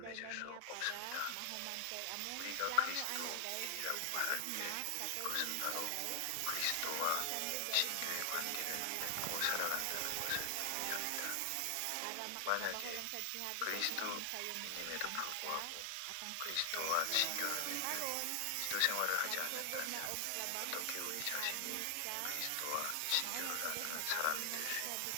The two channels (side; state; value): both; different; correlation 0.00